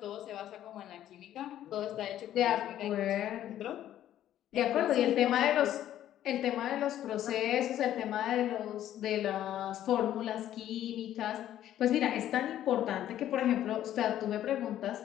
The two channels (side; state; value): right; quieter; 11.9 dB